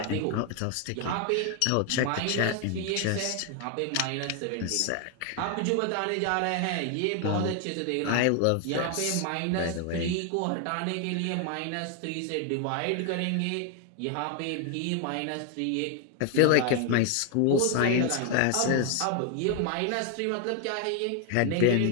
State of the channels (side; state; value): both; different; correlation 0.00